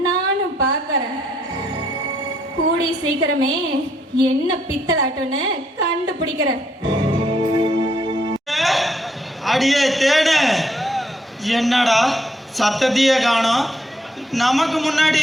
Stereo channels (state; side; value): normal; both; correlation 0.72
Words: நானும் பார்க்கறேன். கூடி சீக்கிரமே என்ன பித்தலாட்டம்னு கண்டுபிடிக்கிறேன். அடியே தேடு, என்னடா சத்தத்தையே காணோம்? நமக்கு